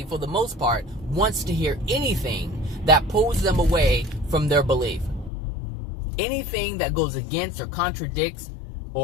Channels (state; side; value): drops out; right; at 5.3 s